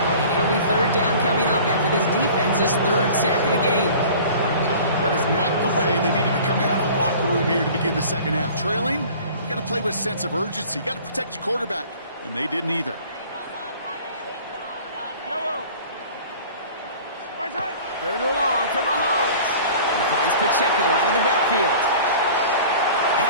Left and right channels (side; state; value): both; inverted; correlation -0.45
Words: And it'll be 3rd down coming up after this defense's 3rd sack of the game. That is not the way they needed to come out of the locker room here to begin the 2nd half. Trailing, you got to play with a sense of urgency. You got to protect your quarterback, and they didn't either. Third and long for Mahomes. He finds Pacheco out of the backfield.